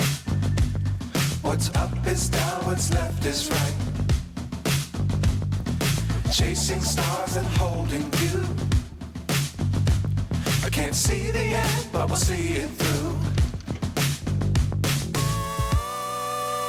What's up is down, what's left is right. Chasing stars and holding you. I can't see the end, but we'll see it through.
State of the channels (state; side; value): identical; both; correlation 1.00